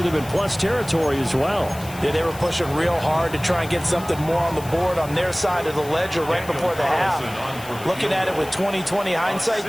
in plus territory as well. Yeah, they were pushing real hard to try and get something more on the board on their side of the ledger right before the half. Looking at it with 20/20 hindsight,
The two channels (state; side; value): noise; left; hiss, 17 dB below the sound